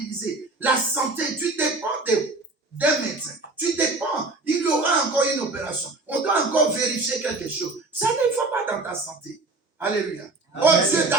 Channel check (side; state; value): left; quieter; 3.3 dB